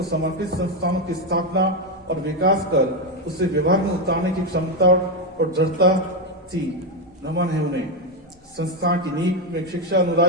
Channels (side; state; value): both; normal; correlation 0.08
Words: समर्पित संस्थानों की स्थापना और विकास कर उसे व्यवहार में उतारने की क्षमता और दृढ़ता थी। नमन है उन्हें। संस्थान की नींव में शिक्षा